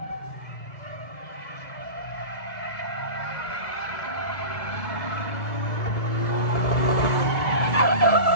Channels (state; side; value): late; right; 2.3 ms